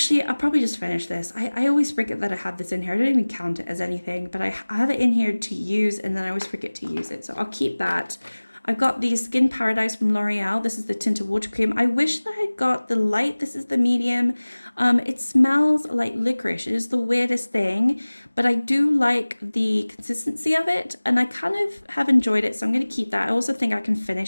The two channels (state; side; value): inverted; both; correlation -1.00